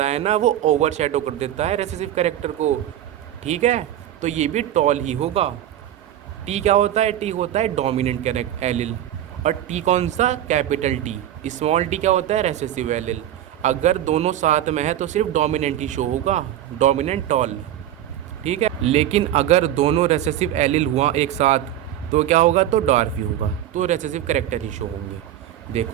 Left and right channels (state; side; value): quieter; left; 12.0 dB